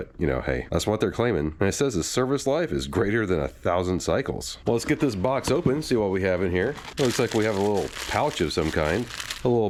hey, that's what they're claiming. And it says the service life is greater than 1,000 cycles. Well, let's get this box open, see what we have in here. It looks like we have a little pouch of some kind. A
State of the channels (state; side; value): identical; both; correlation 1.00